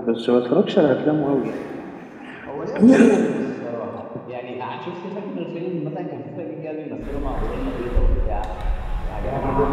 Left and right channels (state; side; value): identical; both; correlation 1.00